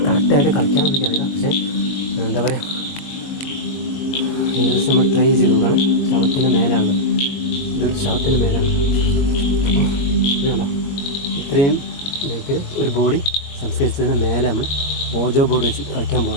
കറക്റ്റായിട്ട് കളിക്കാമെന്ന് എനിക്കറിയില്ല, പക്ഷേ എന്താ പറയുക, ഏകദേശം നമ്മൾ ട്രൈ ചെയ്ത് നോക്കണം. ശവത്തിൻ്റെ മേലാണ്, ഇതൊരു ശവത്തിൻ്റെ മേലാണ്. അപ്പോൾ ഇതല്ല, ഇത്രയും ഇതിൽ ഒരു ബോഡി സംസ്കരിച്ചതിന് മേലെ നമ്മൾ ഓജോ ബോർഡ് വെച്ച് കളിക്കാൻ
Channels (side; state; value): right; late; 22 ms